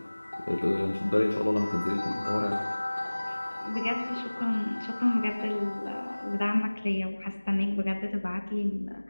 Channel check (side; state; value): both; inverted; correlation -1.00